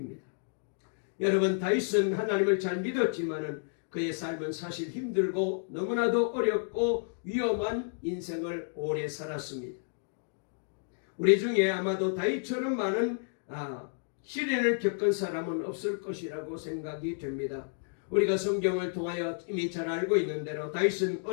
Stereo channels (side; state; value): right; silent; digital silence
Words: 여러분, 다윗은 하나님을 잘 믿었지만은 그의 삶은 사실 힘들고 너무나도 어렵고 위험한 인생을 오래 살았습니다. 우리 중에 아마도 다윗처럼 많은 시련을 겪은 사람은 없을 것이라고 생각이 됩니다. 우리가 성경을 통하여 이미 잘 알고 있는 대로 다윗은